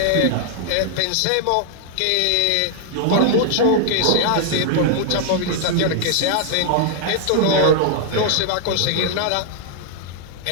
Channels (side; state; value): both; different; correlation 0.00